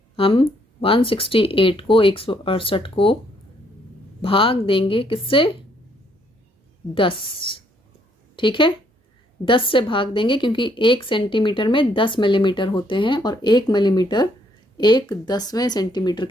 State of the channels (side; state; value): both; normal; correlation 0.69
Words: हम 168 को 168 को भाग देंगे किससे? 10। ठीक है, 10 से भाग देंगे क्योंकि 1 सेंटीमीटर में 10 मिलीमीटर होते हैं और 1 मिलीमीटर 1/10वें सेंटीमीटर